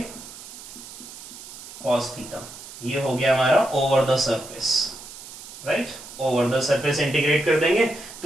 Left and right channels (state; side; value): noise; right; hiss, 15 dB below the sound